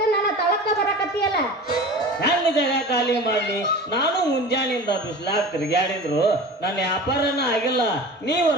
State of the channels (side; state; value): both; normal; correlation 0.36